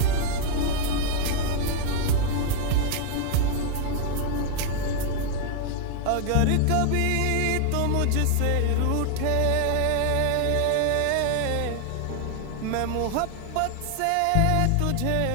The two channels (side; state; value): both; different; correlation 0.00